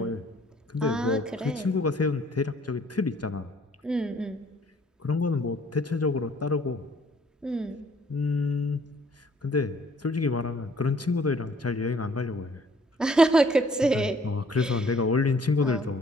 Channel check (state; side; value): normal; both; correlation 0.60